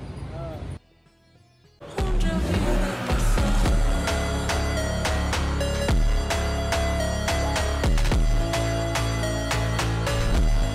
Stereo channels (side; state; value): both; identical; correlation 1.00